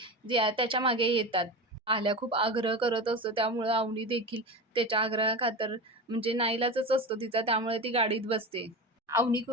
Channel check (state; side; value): normal; both; correlation 0.25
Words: त्याच्या मागे येतात. आल्या खूप आग्रह करत असतो. त्यामुळं अवनी देखील त्याच्या आग्रहाखातर म्हणजे नाईलाजच असतो तिचा, त्यामुळे ती गाडीत बसते. अवनी